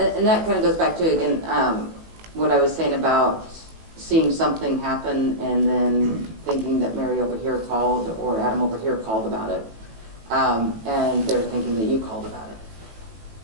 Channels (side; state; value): left; late; 18 ms